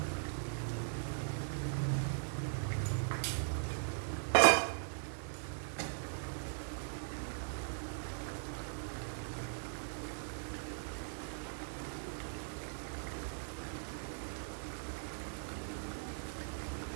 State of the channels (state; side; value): silent; left; digital silence